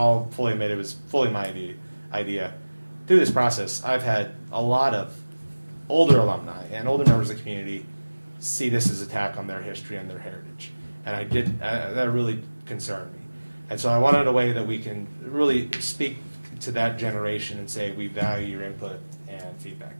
fully admit it was fully my idea. Through this process, I've had a lot of older alumni and older members of the community see this as an attack on their history and their heritage. And that really concerned me. And so I wanted a way that we can really speak to that generation and say, we value your input and feedback.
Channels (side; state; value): both; inverted; correlation -1.00